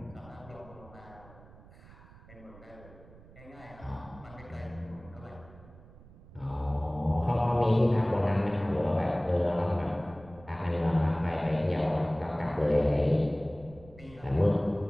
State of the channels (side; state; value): right; noise; rumble, 21 dB below the sound